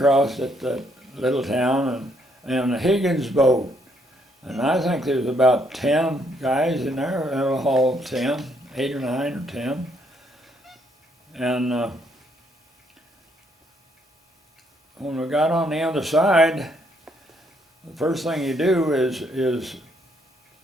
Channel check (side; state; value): both; normal; correlation 0.71